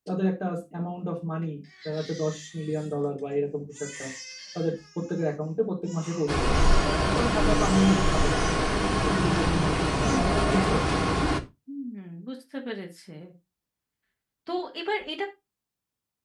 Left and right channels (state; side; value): identical; both; correlation 1.00